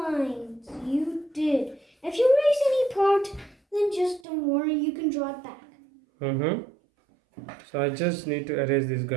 you did. If you erase any part, then just don't worry, you can draw it back. Mm-hmm. So I just need to erase this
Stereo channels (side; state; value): left; drops out; at 4.2 s